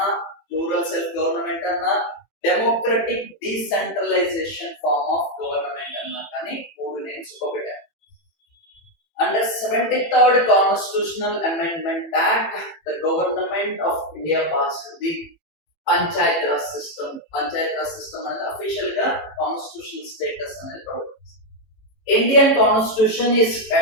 రూరల్ సెల్ఫ్ గవర్నమెంట్ అన్నా, democratic decentralisation form of government అన్నా కానీ మూడు నేమ్స్ ఒకటే. Under 73rd Constitutional Amendment Act, the Government of India passed the Panchayat Raj system. Panchayat Raj system అనేది official గా constitutional status అనేది provide చేస్తుంది. Indian Constitution is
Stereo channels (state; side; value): late; right; 18 ms